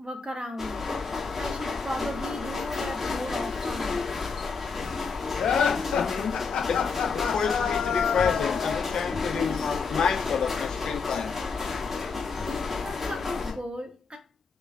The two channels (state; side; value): quieter; right; 5.0 dB